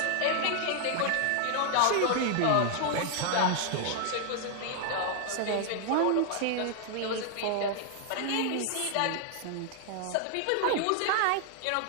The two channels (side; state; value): both; different; correlation 0.00